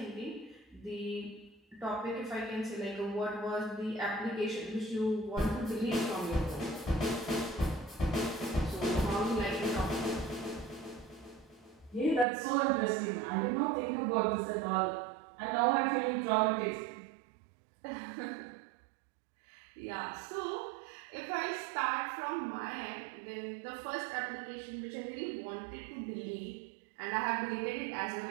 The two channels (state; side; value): drops out; left; at 12.2 s